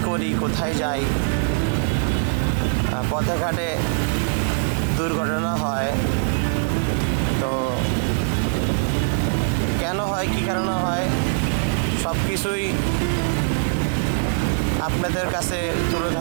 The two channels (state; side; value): silent; left; digital silence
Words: করি, কোথায় যাই, পথে ঘাটে দুর্ঘটনা হয়, তো কেন হয়, কী কারণে হয়, সব কিছুই আপনাদের কাছে তুলে